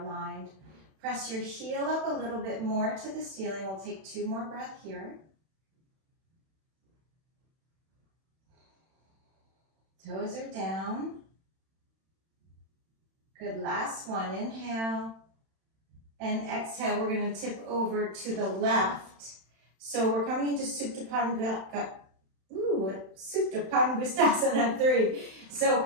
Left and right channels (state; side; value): late; left; 31 ms